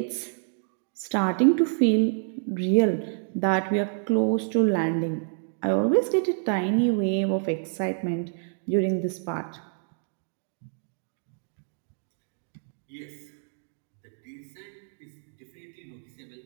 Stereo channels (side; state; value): left; silent; digital silence